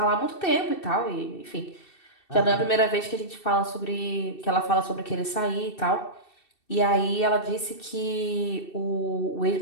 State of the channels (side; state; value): right; late; 2.7 ms